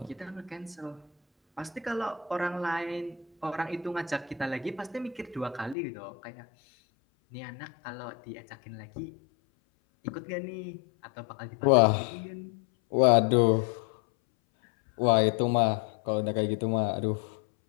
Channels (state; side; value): drops out; right; at 5.8 s